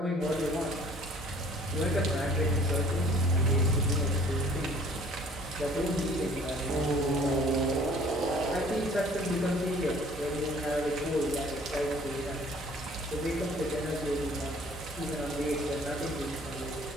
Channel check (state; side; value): normal; both; correlation 0.54